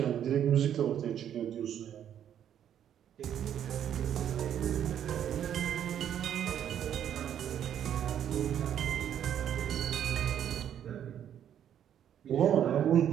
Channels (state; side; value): quieter; left; 9.8 dB